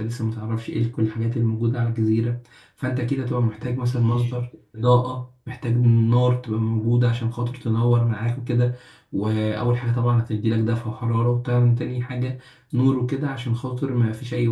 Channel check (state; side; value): identical; both; correlation 1.00